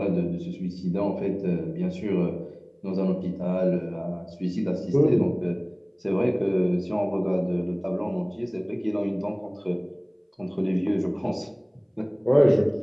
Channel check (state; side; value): identical; both; correlation 1.00